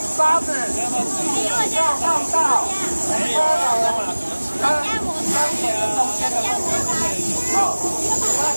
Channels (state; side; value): inverted; both; correlation -1.00